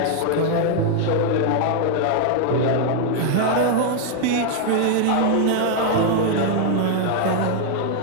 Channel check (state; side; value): different; both; correlation 0.00